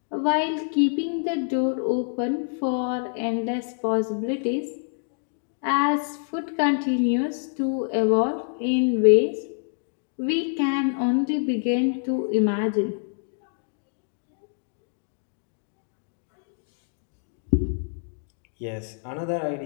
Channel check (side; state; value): right; silent; 58 dB below the other